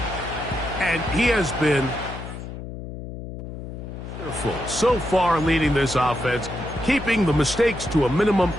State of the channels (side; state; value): left; noise; hum, 10 dB below the sound